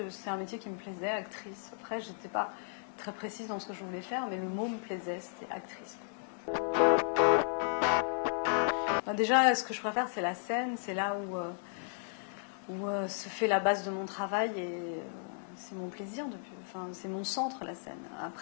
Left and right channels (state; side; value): silent; right; digital silence